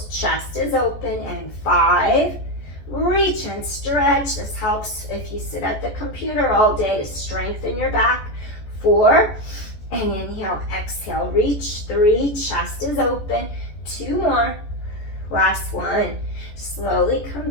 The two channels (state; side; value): late; right; 14 ms